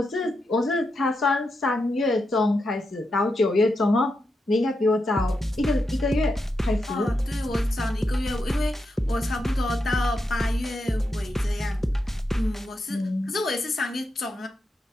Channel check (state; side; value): normal; both; correlation 0.86